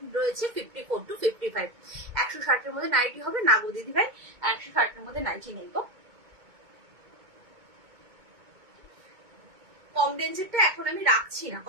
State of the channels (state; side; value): late; left; 2.2 ms